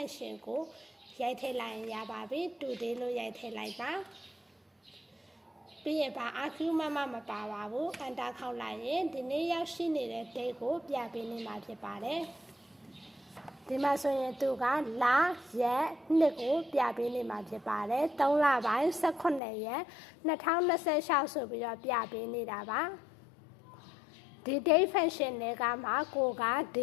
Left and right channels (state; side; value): drops out; right; at 19.4 s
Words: ကိုရိုက်ထည့်လိုက်ရင်ရပါပြီ Today လို့ရိုက်ထည့်လိုက်ပါပြီးရင်ပါ argument မပါပါဘူး enter ခေါက်လိုက်ရင်ဒီနေ့ရောက်ရှိနေတဲ့ Date ကိုပြပေးနေမှာဖြစ်ပါတယ်ဒီမှာဆိုရင်သူကလာရက်နှစ်ကိုပြပေးနေမှာဖြစ်ပါတယ်3လပိုင်း18ရက်2026ဆိုပြီးတော့ပြပေးနေတာပါဒီ Date Fashion တွေကမှကိုက